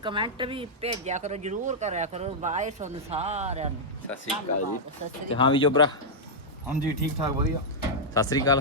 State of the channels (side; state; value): both; normal; correlation -0.07